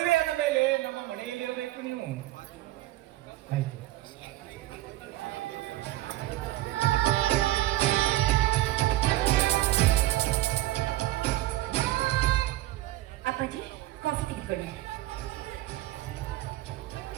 ಮೇಲೆ ನಮ್ಮ ಮನೆಯಲ್ಲಿ ಇರಬೇಕು ನೀವು. ಆಯ್ತು. ಅಪ್ಪಾಜಿ, ಕಾಫಿ ತೆಗೆದುಕೊಳ್ಳಿ.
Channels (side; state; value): left; quieter; 16.3 dB